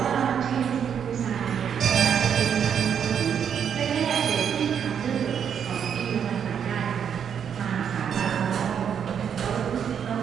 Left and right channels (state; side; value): quieter; left; 8.0 dB